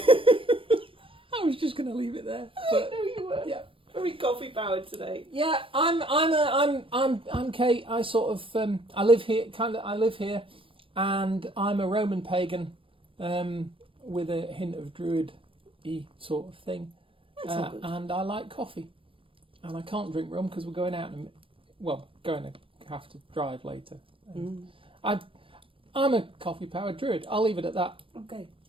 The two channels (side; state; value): left; late; 0.25 ms